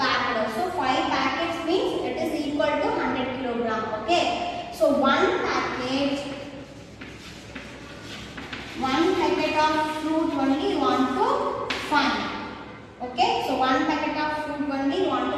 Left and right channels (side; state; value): both; identical; correlation 1.00